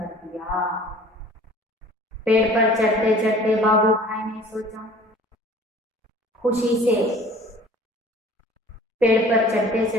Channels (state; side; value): normal; both; correlation 0.48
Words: दिया। पेड़ पर चढ़ते चढ़ते बाबू भाई ने सोचा, खुशी से पेड़ पर चढ़ते